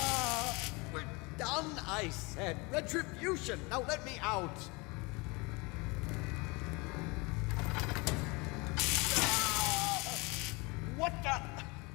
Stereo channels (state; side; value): quieter; right; 26.8 dB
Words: We're done, I said! Retribution! Now let me out! What the?